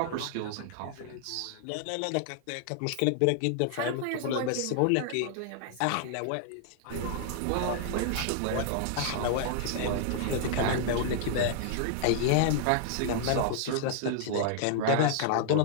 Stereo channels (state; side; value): different; both; correlation -0.01